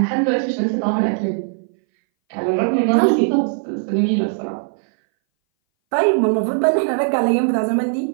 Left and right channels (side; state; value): left; silent; 61 dB below the other